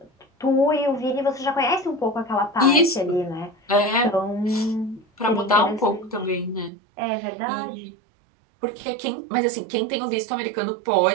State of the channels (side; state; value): left; drops out; at 6.7 s